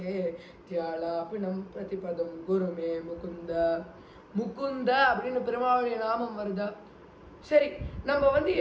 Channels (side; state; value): both; identical; correlation 1.00